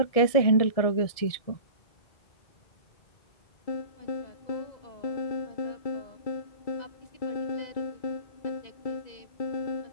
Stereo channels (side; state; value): right; late; 1.7 ms